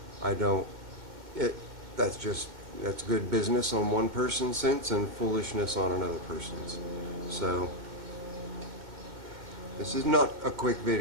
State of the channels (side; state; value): left; late; 2.1 ms